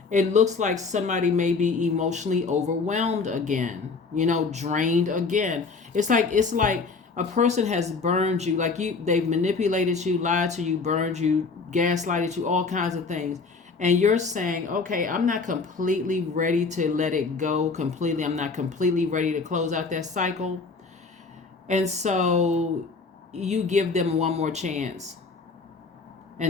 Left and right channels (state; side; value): quieter; right; 4.4 dB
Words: it looks like somebody may be emotionally overwhelmed again, drained again. It's like a person has burned you, they've manipulated you, lied to you, burned you, gaslighted you, all kinds of things. And you're saying, okay, I'm not completely ready to let it go completely. I'm not completely ready to close out that cycle. And so you give them one more chance.